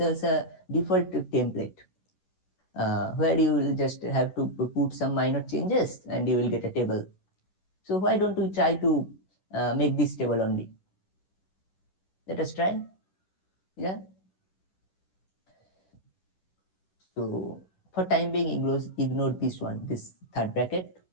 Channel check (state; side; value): late; right; 11 ms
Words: us a default template where you will just have to put some minor changes and you will get a table. So why don't we try to make this table only? Let us try. Yeah. So for time being, ignore this one, this third bracket.